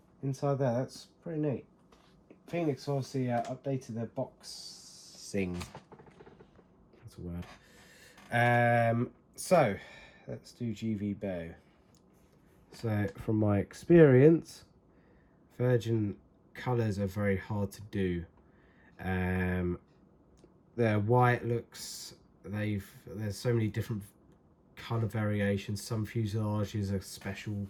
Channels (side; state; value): both; identical; correlation 1.00